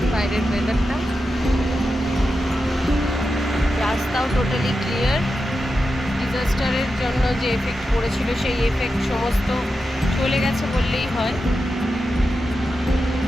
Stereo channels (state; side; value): normal; both; correlation 0.90